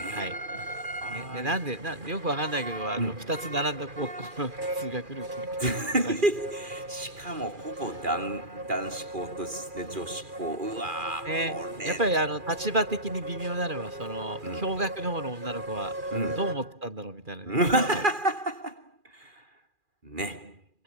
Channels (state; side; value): late; left; 2.4 ms